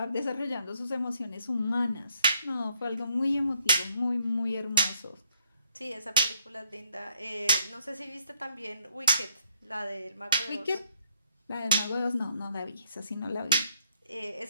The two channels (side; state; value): both; inverted; correlation -0.71